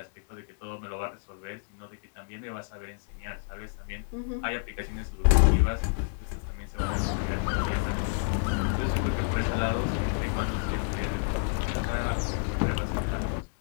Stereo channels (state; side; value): silent; right; digital silence